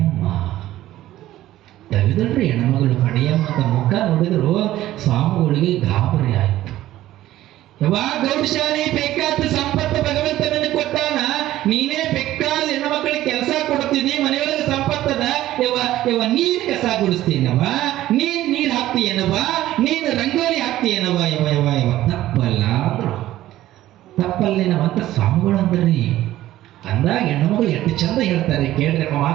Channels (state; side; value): quieter; left; 14.5 dB